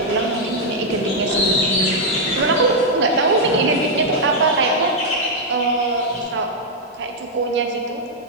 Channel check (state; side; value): normal; both; correlation -0.02